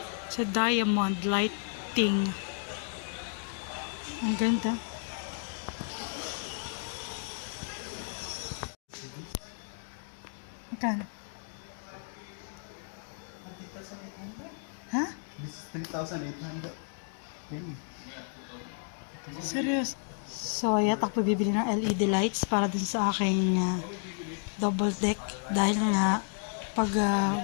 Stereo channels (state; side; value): silent; right; 56 dB below the other